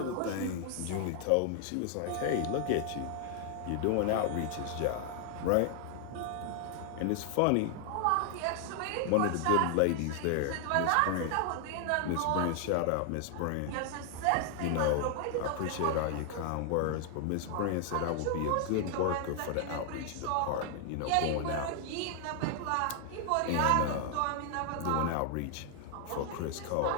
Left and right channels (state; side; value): different; both; correlation 0.00